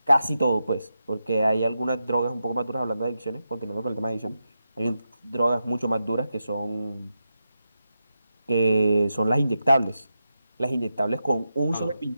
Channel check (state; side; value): inverted; both; correlation -0.89